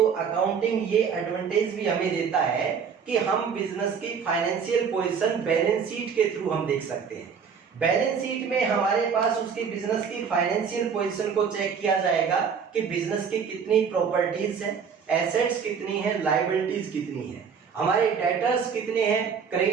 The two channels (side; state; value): left; quieter; 6.5 dB